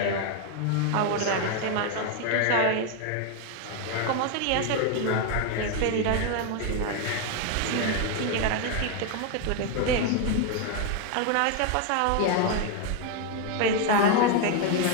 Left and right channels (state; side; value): different; both; correlation 0.01